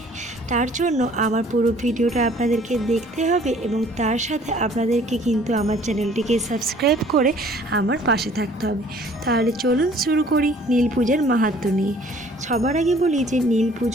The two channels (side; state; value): both; normal; correlation 0.55